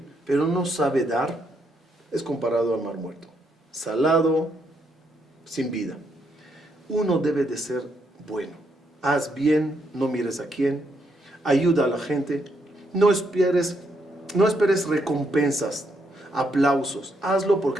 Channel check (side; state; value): both; normal; correlation 0.76